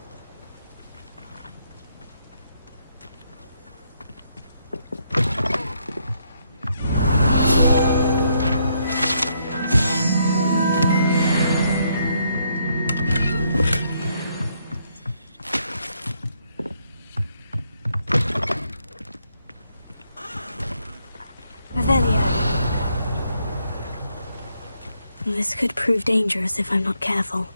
Revelio. This could prove dangerous if I'm not careful.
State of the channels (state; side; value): inverted; both; correlation -0.74